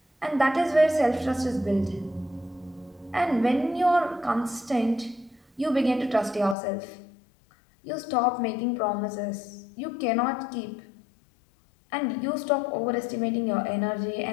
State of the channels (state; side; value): drops out; right; at 6.6 s